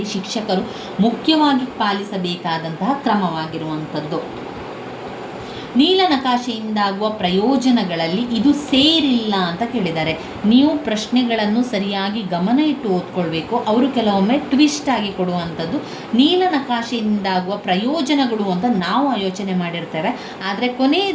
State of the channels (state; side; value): identical; both; correlation 1.00